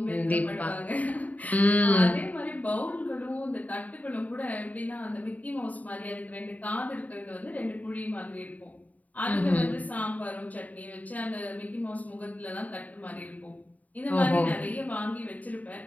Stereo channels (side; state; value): right; late; 0.073 ms